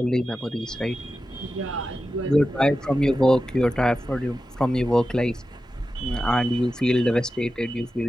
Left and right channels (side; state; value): both; normal; correlation 0.92